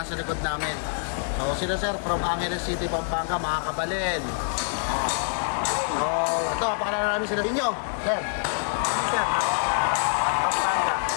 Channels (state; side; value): silent; right; digital silence